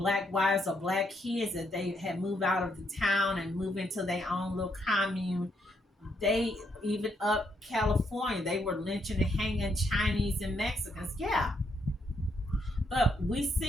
wives or black kids that they had moved out of the town and moved into their own little commune. They even up California, they were lynching and hanging Chinese and Mexicans. Yeah. But we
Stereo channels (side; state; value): both; normal; correlation 0.75